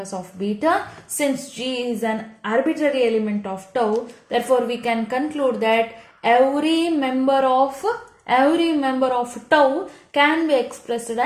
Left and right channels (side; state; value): both; identical; correlation 1.00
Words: of beta. Since G is an arbitrary element of tau, therefore we can conclude that every member of tau can be expressed